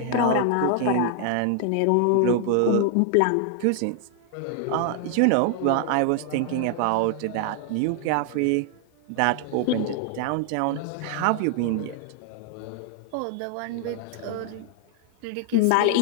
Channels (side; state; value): both; different; correlation 0.00